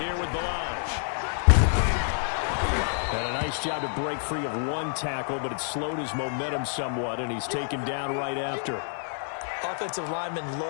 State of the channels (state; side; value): silent; right; digital silence